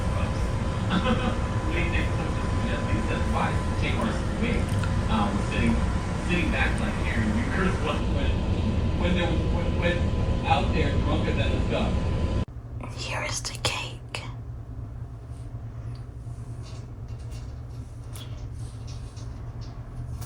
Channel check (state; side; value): identical; both; correlation 1.00